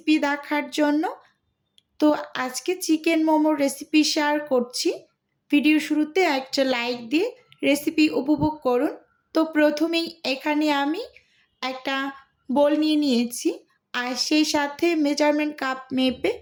দেখার জন্য। তো আজকে চিকেন মোমোর রেসিপি শেয়ার করছি। ভিডিও শুরুতে একটা লাইক দিয়ে রেসিপি উপভোগ করুন। তো প্রথমেই এখানে আমি একটা বোল নিয়ে নিয়েছি, আর সেই সাথে মেজারমেন্ট কাপ মেপে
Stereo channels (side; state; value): both; identical; correlation 1.00